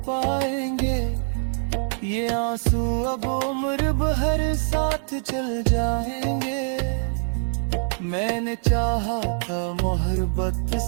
पाएंगे, ये आंसू अब उम्र भर साथ चल जाएंगे। मैंने चाहा था मोहब्बत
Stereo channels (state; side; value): silent; left; 60 dB below the other